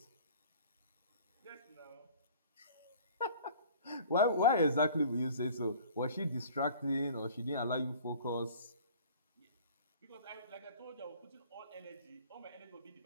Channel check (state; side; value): inverted; both; correlation -0.47